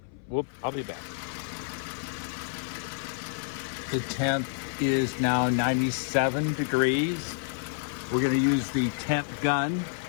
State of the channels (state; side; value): silent; right; 56 dB below the other